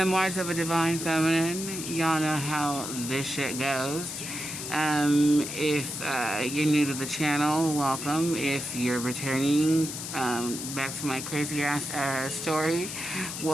of a Divine Feminine. Y'all know how this shit goes. If you're new to the channel, welcome. If you're returning back to my crazy ass story,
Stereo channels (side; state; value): left; noise; hiss, 7 dB below the sound